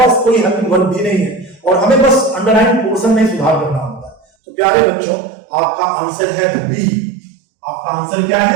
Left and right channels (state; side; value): drops out; left; at 4.2 s